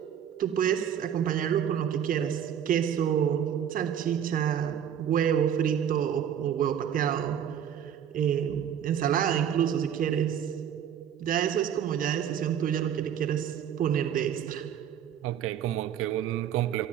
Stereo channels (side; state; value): left; quieter; 9.2 dB